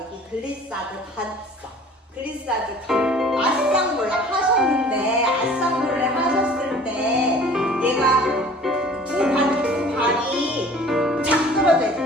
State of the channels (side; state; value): both; normal; correlation 0.48